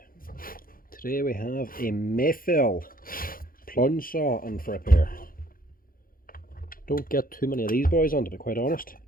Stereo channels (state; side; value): late; right; 0.42 ms